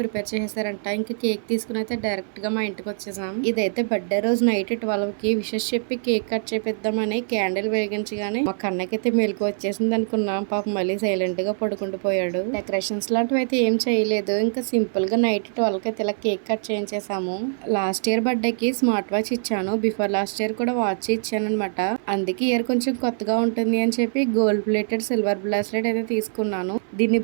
చేసేసారంట. ఇంకా కేక్ తీసుకుని అయితే డైరెక్ట్ గా మా ఇంటికి వచ్చేసాం. ఇదైతే బర్త్డే రోజు నైట్ 12 కి విషెస్ చెప్పి కేక్ కట్ చేపిద్దామని క్యాండిల్ వెలిగించగానే మా కన్నకైతే మెలకు వచ్చేసింది అనుకున్నాం. పాపం మళ్ళీ సైలెంట్ గా పడుకుంటూ పోయాడు. డెకరేషన్స్ లాంటివి అయితే ఏం చేయలేదు, ఇంకా సింపుల్ గా నైట్ 12 కి అయితే ఇలా కేక్ కట్ చేయించేసాము. లాస్ట్ ఇయర్ బర్త్డే కి స్మార్ట్ వాచ్ ఇచ్చాను, బిఫోర్ లాస్ట్ ఇయర్ కూడా వాచ్ ఇచ్చాను అనమాట. అందుకే ఇయర్ కొంచెం కొత్తగా ఉంటుంది అని చెప్పి గోల్డ్ ప్లేటెడ్ సిల్వర్ బ్రాస్లెట్ అయితే తీసుకున్నాను. దీన్ని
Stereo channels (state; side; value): silent; left; 62 dB below the other